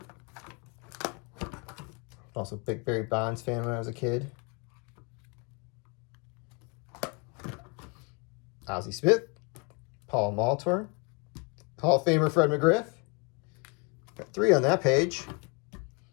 Also a big Barry Bonds fan when I was a kid. Ozzie Smith, Paul Maltor, Hall of Famer Fred McGriff. Got 3 on that page.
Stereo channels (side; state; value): right; quieter; 33.1 dB